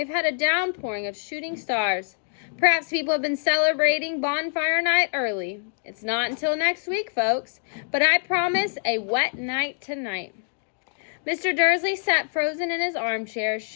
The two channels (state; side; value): silent; right; digital silence